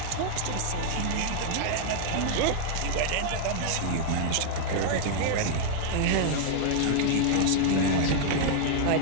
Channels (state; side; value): different; both; correlation -0.01